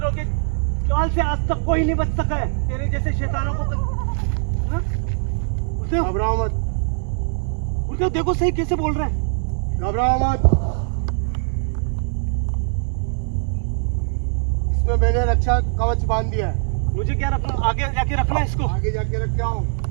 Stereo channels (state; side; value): silent; left; 64 dB below the other